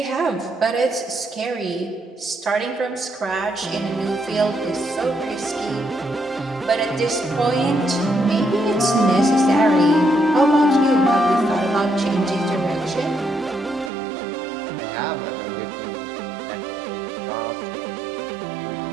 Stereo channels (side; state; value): left; drops out; at 13.9 s